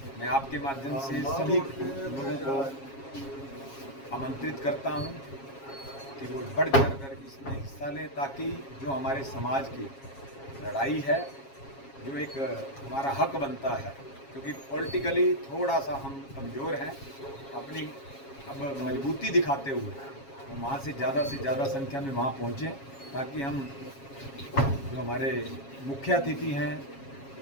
मैं आपके माध्यम से सभी लोगों को आमंत्रित करता हूं कि वो बढ़ चढ़ कर इसमें हिस्सा लें, ताकि जो हमारे समाज की लड़ाई है, जो एक हमारा हक बनता है, क्योंकि पॉलिटिकली थोड़ा सा हम कमज़ोर हैं, अपनी अब मजबूती दिखाते हुए हम वहाँ से ज़्यादा संख्या में वहाँ पहुँचें, ताकि हम जो हमारे मुख्य अतिथि हैं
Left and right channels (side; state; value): right; late; 7.3 ms